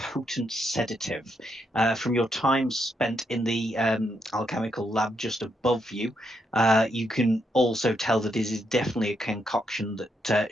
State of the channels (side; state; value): both; normal; correlation 0.79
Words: sedative. From your time spent in the alchemical lab just above you, you can also tell that this is definitely a concoction